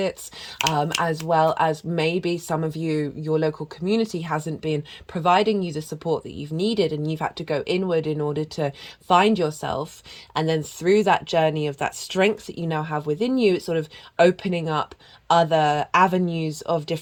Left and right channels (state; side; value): identical; both; correlation 1.00